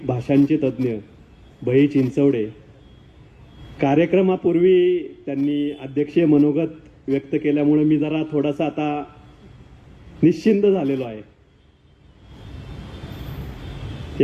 भाषांचे तज्ज्ञ बही चिंचवडे. कार्यक्रमापूर्वी त्यांनी अध्यक्षीय मनोगत व्यक्त केल्यामुळे मी जरा थोडासा आता निश्चिंत झालेलो आहे.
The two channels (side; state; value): both; identical; correlation 1.00